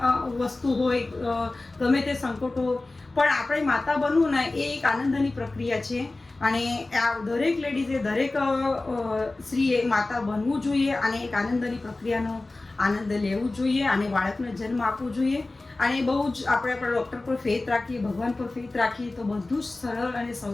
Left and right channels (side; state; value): right; quieter; 3.1 dB